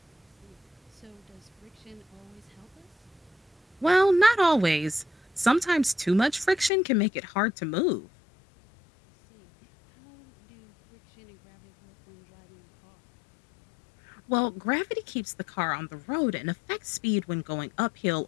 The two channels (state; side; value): drops out; right; at 6.7 s